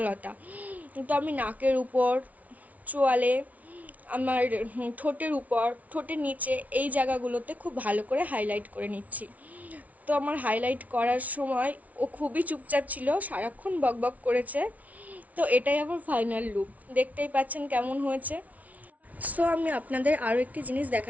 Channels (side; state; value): left; late; 0.071 ms